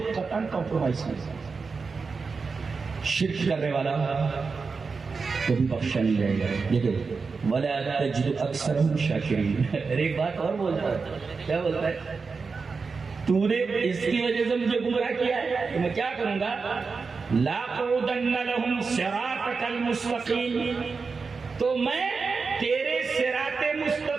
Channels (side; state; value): left; quieter; 4.7 dB